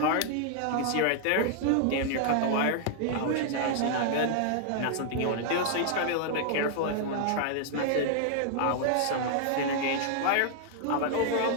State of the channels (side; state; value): both; different; correlation 0.00